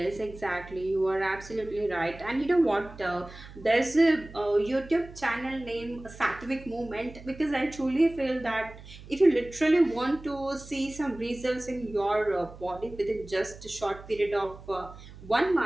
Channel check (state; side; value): noise; right; hum, 17 dB below the sound